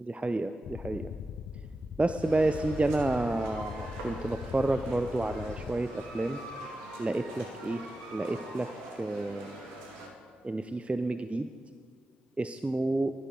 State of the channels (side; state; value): both; normal; correlation 0.92